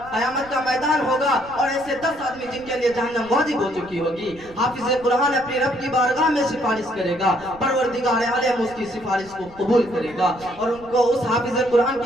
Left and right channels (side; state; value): right; noise; rumble, 21 dB below the sound